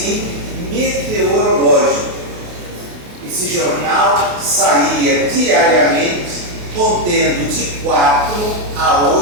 meteorológico. Esse jornal saía diariamente contendo de 4 a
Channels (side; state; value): left; late; 28 ms